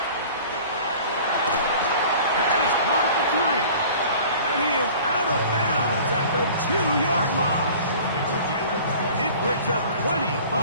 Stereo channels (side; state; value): both; inverted; correlation -0.45